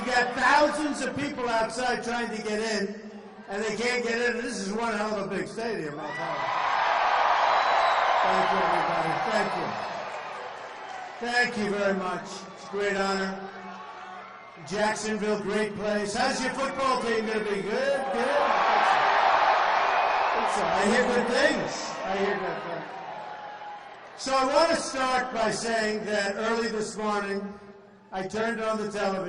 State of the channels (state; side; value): identical; both; correlation 1.00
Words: got thousands of people outside trying to get in, and they can't get in. This is one hell of a big stadium. Thank you, everybody. Thank you. Thank you very much. It's a great honor. Jacksonville, great place. How's your football team going to be? Good, good. I hear good things. I hear good things. So I want to start by saying that early this morning, I turned on the